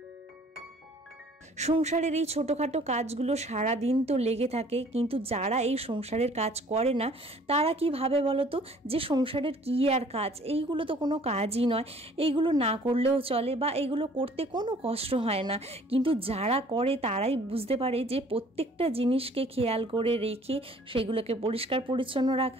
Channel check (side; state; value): both; normal; correlation 0.55